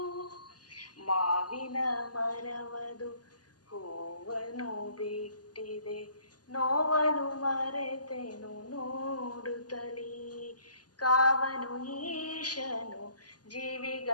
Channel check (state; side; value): late; right; 0.69 ms